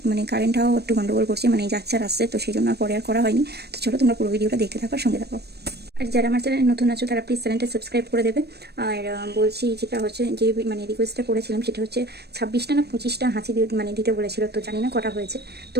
মানে কারেন্টটাও একটু গন্ডগোল করছে, মানে যাচ্ছে আর আসছে, তো সেই জন্য আর পরে আর করা হয়নি। তো চলো তোমরা পুরো ভিডিওটা দেখতে থাকো, আর সঙ্গে থাকো। আর যারা আমার চ্যানেলে নতুন আছো তারা প্লিজ চ্যানেলটা সাবস্ক্রাইব করে দেবে। আর বলছি, যেটা হচ্ছে যে মানে রিকোয়েস্টটা করেছিলাম সেটা হচ্ছে 26টা না 25টা হাঁচি দিতে বলেছিল, তো জানি না কটা হয়েছে। তো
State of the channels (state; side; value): late; left; 0.47 ms